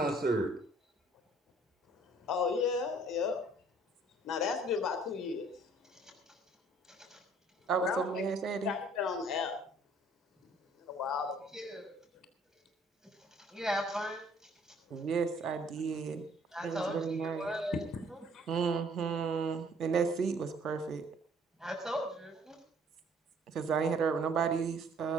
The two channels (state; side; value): normal; both; correlation 0.58